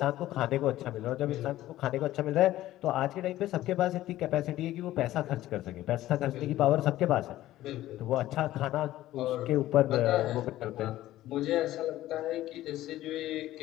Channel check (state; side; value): quieter; right; 14.8 dB